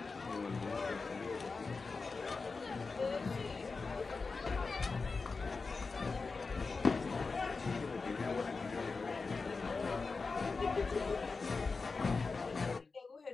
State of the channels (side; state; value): right; quieter; 4.3 dB